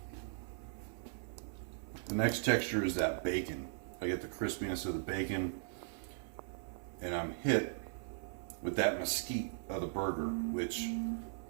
The next texture is that bacon. I get the crispiness of the bacon, and I'm hit with that mesquite of the burger, which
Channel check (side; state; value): left; silent; 52 dB below the other